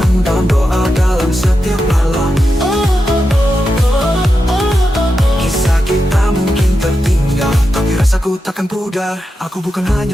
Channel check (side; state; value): both; normal; correlation 0.88